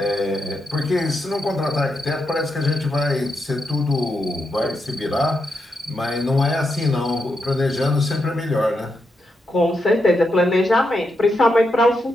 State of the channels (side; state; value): both; normal; correlation 0.84